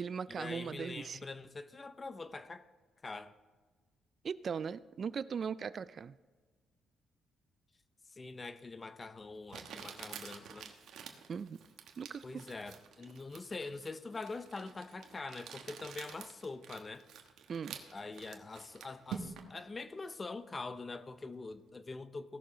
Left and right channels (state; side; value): normal; both; correlation 0.83